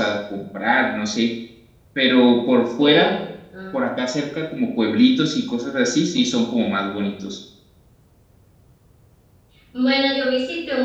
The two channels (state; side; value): identical; both; correlation 1.00